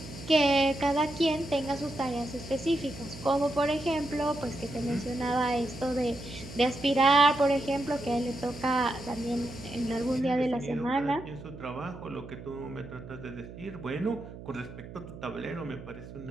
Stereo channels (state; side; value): noise; right; hum, 14 dB below the sound